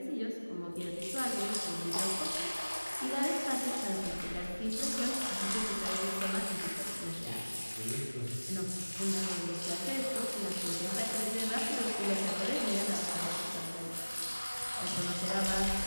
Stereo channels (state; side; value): inverted; both; correlation -1.00